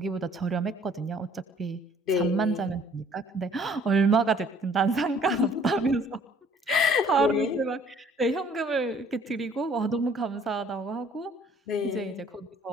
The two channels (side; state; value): both; normal; correlation 0.57